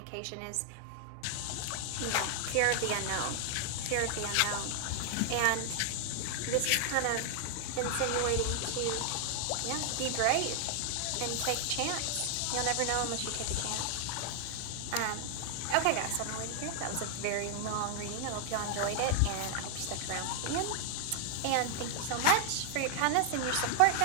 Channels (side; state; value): both; different; correlation 0.00